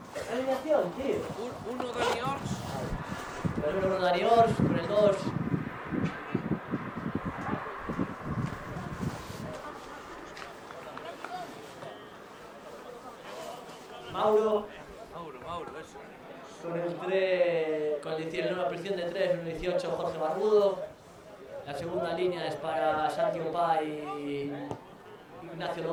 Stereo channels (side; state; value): both; identical; correlation 1.00